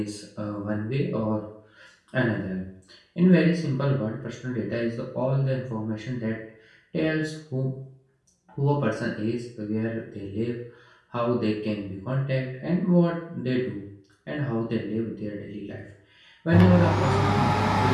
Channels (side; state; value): both; identical; correlation 1.00